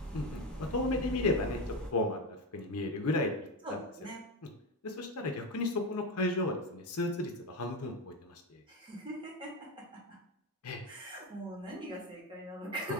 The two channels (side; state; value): both; normal; correlation 0.16